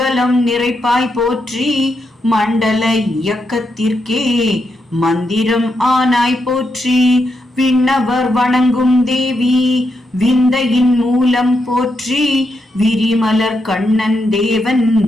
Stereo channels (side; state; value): both; normal; correlation 0.82